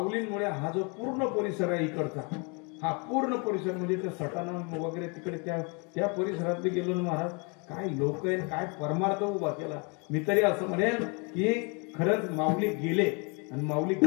हा जो पूर्ण परिसर आहे इकडचा, हा पूर्ण परिसर म्हणजे त्या सटाणा वगैरे तिकडे त्या परिसरात गेलो ना महाराज, काय लोक आहे, काय परमार्थ उभा केला. मी तरी असं म्हणेन की खरंच माऊली गेले आणि माऊली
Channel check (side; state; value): right; quieter; 33.2 dB